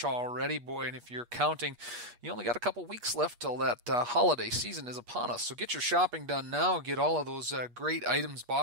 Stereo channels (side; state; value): left; late; 8.4 ms